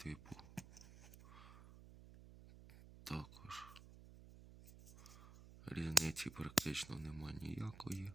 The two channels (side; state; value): right; noise; hum, 16 dB below the sound